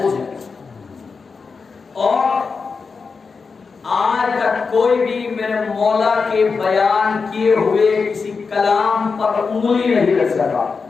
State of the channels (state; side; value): quieter; right; 4.9 dB